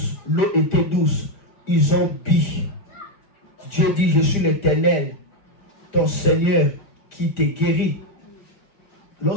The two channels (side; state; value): right; late; 5.0 ms